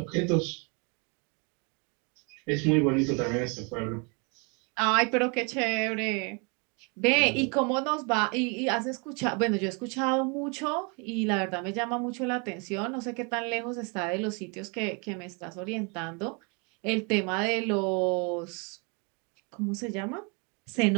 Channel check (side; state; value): left; quieter; 33.5 dB